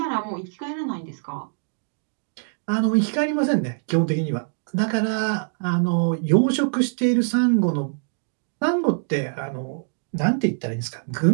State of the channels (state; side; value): silent; left; digital silence